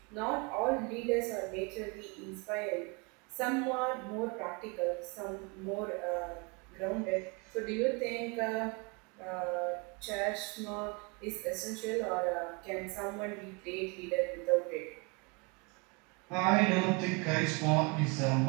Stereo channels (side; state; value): left; quieter; 29.9 dB